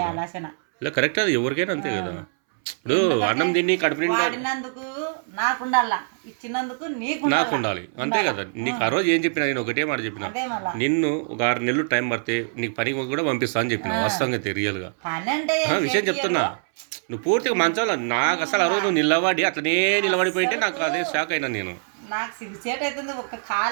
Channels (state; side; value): silent; left; 63 dB below the other